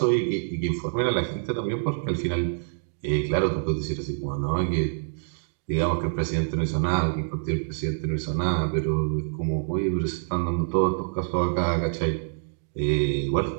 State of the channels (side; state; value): left; silent; digital silence